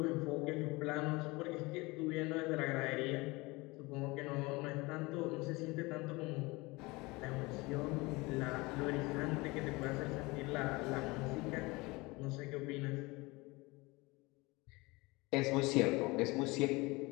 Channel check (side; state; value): right; quieter; 23.7 dB